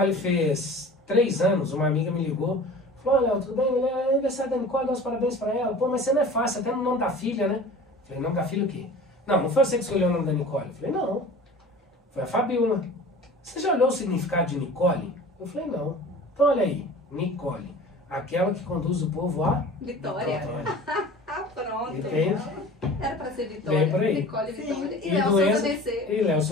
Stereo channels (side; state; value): both; normal; correlation 0.41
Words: fez 3 anos, uma amiga me ligou, falou: Léo, tudo bem? É aniversário da Nicole, dá os parabéns pra ela. Pô, mas você não é fácil, até no nome da filha, né? Falei: nome da filha o quê? Não foi você que escolheu o nome da Nicole. Eu falei: não, foi a Fabiola. Você já olhou o significado de Nicole? Eu falei: não. Então olha aí, Nicole, aquela que conduz o povo à Vitória. Pronto. Entende? Era pra ser Vitória. Vem por aí. Nicole e Vitória. E E Léo do Souza Enzo,